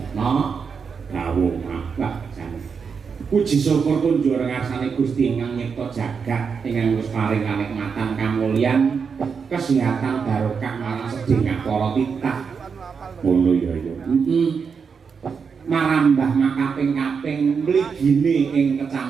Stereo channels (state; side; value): quieter; left; 5.9 dB